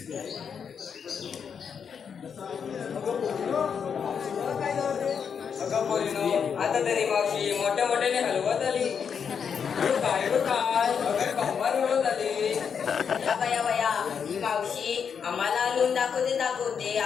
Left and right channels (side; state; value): right; quieter; 6.9 dB